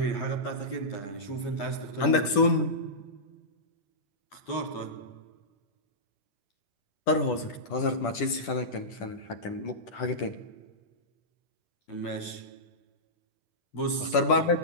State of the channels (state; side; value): late; right; 10 ms